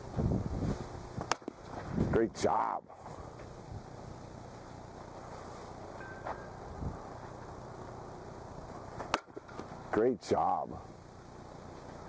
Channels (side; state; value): both; identical; correlation 1.00